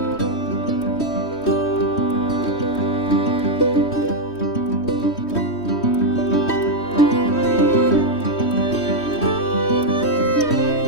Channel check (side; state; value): right; late; 3.1 ms